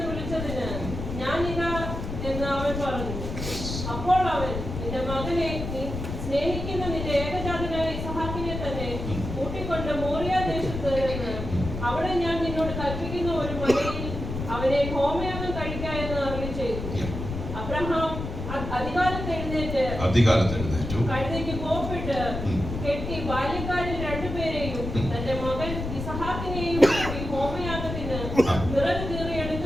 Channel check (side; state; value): left; noise; rumble, 6 dB below the sound